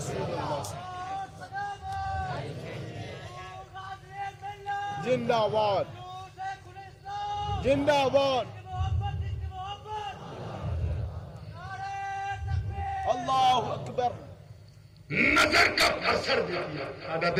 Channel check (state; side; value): identical; both; correlation 1.00